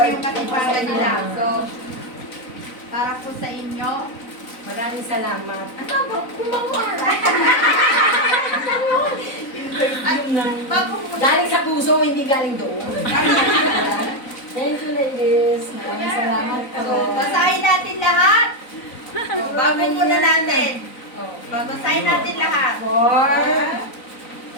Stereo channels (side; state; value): right; late; 4.0 ms